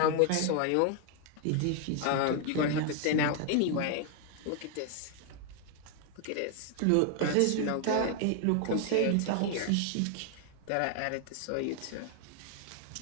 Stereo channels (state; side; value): different; both; correlation 0.00